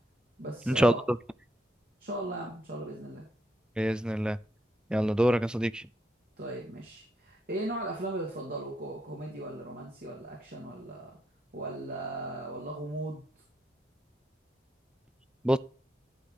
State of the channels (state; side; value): normal; both; correlation 0.79